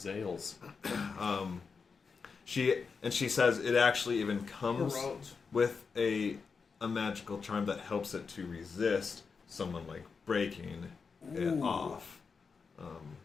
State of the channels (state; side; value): quieter; right; 5.2 dB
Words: she says it actually even comes Roads. with a magical charm that helps it to resist someone like breaking it off.